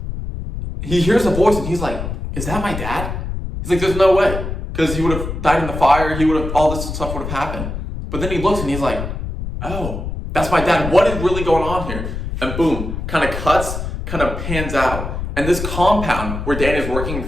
he hears a voice, and he's like, is that my dad? He's like, there's no way. Because he would have died in the fire, all this stuff would have happened. But then he looks and he's like, oh, that's my dad. What is really going on here? And boom, kind of cuts, kind of pans out. And this compound where Dan is working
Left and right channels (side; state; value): left; noise; rumble, 6 dB below the sound